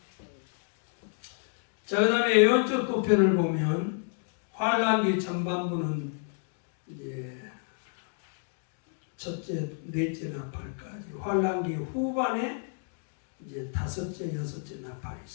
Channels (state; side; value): silent; right; 58 dB below the other